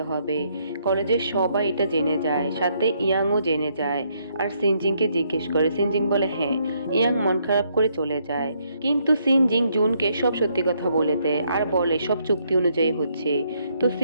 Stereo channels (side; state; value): both; inverted; correlation -0.73